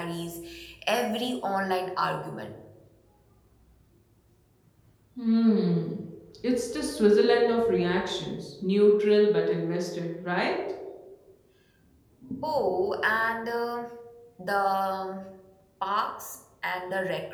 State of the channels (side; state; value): both; identical; correlation 1.00